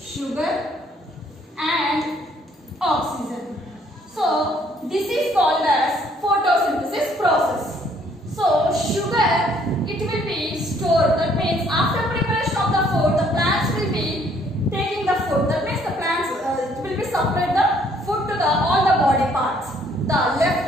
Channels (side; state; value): both; normal; correlation 0.64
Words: and oxygen. So this is called as photosynthesis process. So sugar, it will be stored. That means after preparation of the food, the plants will be taking the food. That means the plants it will be supplied the food to all the body parts. The